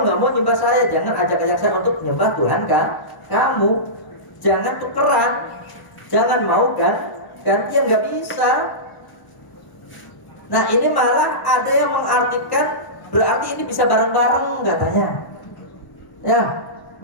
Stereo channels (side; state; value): right; late; 1.0 ms